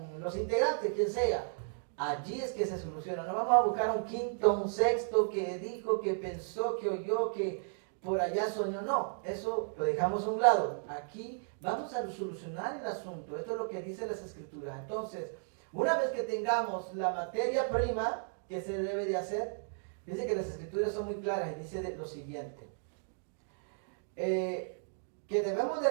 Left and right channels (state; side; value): silent; left; digital silence